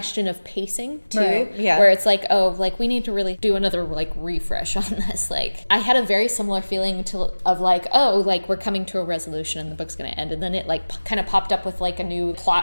of pacing too, right. Yeah. where it's like, oh, like we need to really do another like refresh on this. Like I had a very similar feeling of like, oh, like we're coming to a resolution and the book's going to end. And then it like kind of popped up with like a new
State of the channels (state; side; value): inverted; both; correlation -1.00